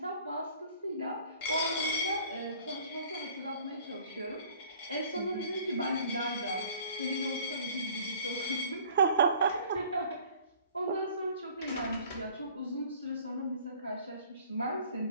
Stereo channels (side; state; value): both; inverted; correlation -0.53